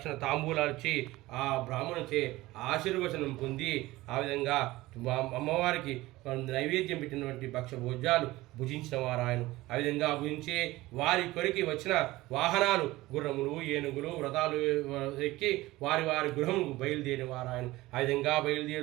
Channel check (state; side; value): quieter; left; 18.6 dB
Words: తాంబూలాలు ఇచ్చి ఆ బ్రాహ్మణుచే ఆశీర్వచనం పొంది ఆ విధంగా అమ్మవారికి నైవేద్యం పెట్టినటువంటి భక్ష భోజ్యాలు భుజించిన వారు ఆయన. ఆ విధంగా భుజించి వారి కొరికి వచ్చిన వాహనాలు గుర్రములు ఏనుగులు వ్రతాలు ఎక్కి వారి గృహముకు బయలుదేరిన వారు ఆయన. ఆ విధంగా